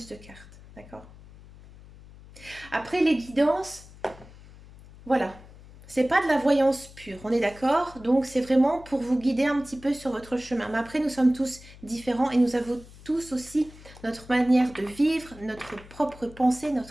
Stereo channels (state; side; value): noise; left; hum, 20 dB below the sound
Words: de cartes, d'accord? Après les guidances, voilà, c'est pas de la voyance pure, on est d'accord? Donc c'est vraiment pour vous guider un petit peu sur votre chemin. Mais après, nous sommes tous différents et nous avons tous aussi notre manière de vivre, notre propre pensée,